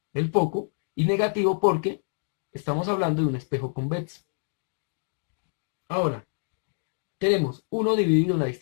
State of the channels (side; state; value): right; silent; digital silence